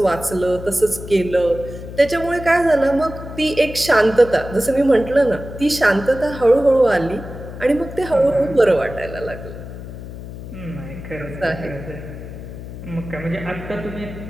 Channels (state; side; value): noise; left; hum, 11 dB below the sound